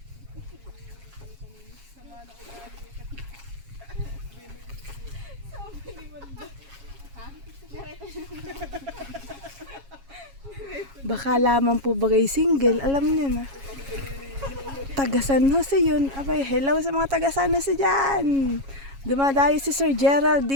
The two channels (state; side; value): late; left; 7.3 ms